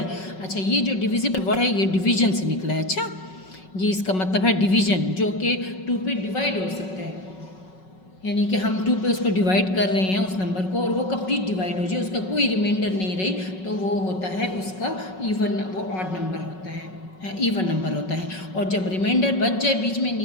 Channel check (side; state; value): right; late; 5.4 ms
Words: अच्छा ये जो डिविजिबल वर्ड है ये डिवीज़न से निकला है। अच्छा, ये इसका मतलब है डिवीजन, जो कि 2 पे डिवाइड हो सकता है, यानी कि हम 2 पे उसको डिवाइड कर रहे हैं उस नंबर को, और वो कंप्लीट डिवाइड हो जाए, उसका कोई रिमाइंडर नहीं रही, तो वो होता है उसका इवन, वो ऑड नंबर होता है, इवन नंबर होता है। और जब रिमाइंडर बच जाए, बीच में